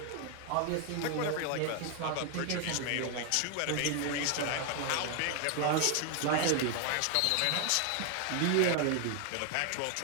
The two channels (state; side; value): different; both; correlation 0.01